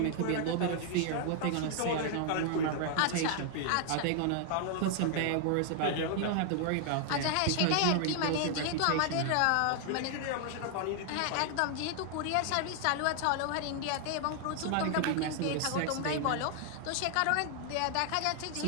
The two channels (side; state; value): both; different; correlation 0.00